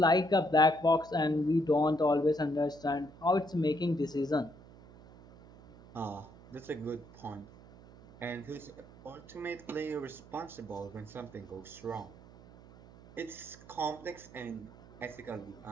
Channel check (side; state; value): right; noise; hum, 21 dB below the sound